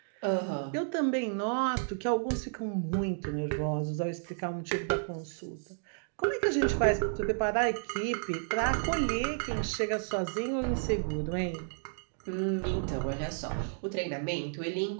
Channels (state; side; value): silent; left; digital silence